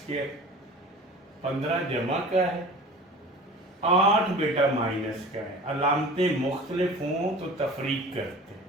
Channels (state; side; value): normal; both; correlation 0.40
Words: 15 जमा का है, 8 बेटा माइनस का है, अलामतें मुख्तलिफ हों तो तफरीक करते हैं,